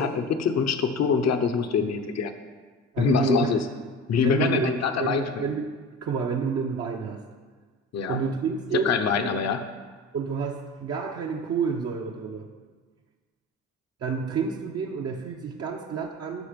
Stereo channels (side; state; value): both; normal; correlation 0.33